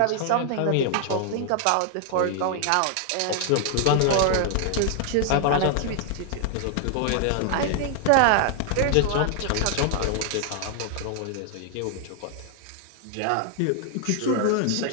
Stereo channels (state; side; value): different; both; correlation 0.00